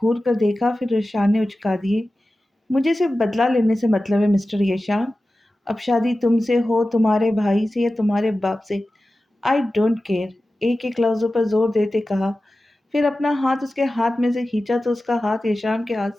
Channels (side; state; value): both; normal; correlation 0.95